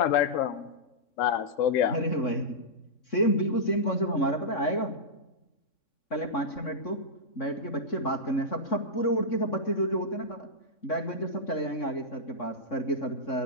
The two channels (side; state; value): right; late; 3.6 ms